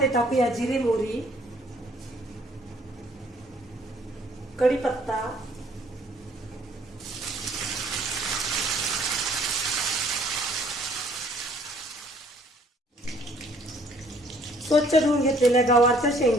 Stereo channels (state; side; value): normal; both; correlation 0.60